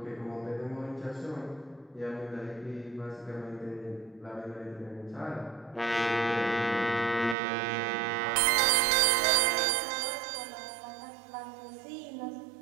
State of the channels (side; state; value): left; drops out; at 7.4 s